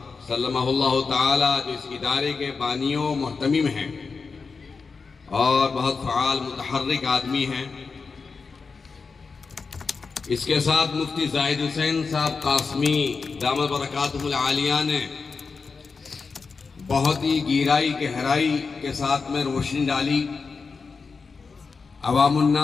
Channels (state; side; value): quieter; right; 4.8 dB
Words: سلمہ اللہ تعالیٰ، جو اس ادارے کے بانیوں محتمم ہیں اور بہت فعال متحرک آدمی ہیں۔ اس کے ساتھ مفتی زاہد حسین صاحب قاسمی دامت برکاتہ العالیہ نے بہت ہی گہرائی گہرائی کے ساتھ میں روشنی ڈالی، عوام